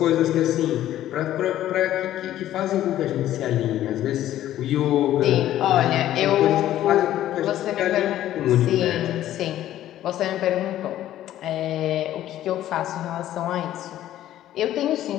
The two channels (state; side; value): quieter; right; 12.9 dB